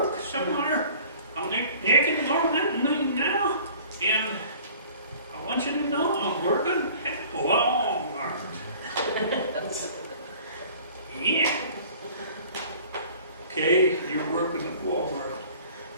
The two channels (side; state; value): both; inverted; correlation -0.49